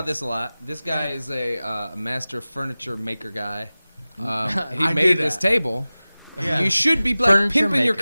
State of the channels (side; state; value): both; inverted; correlation -0.97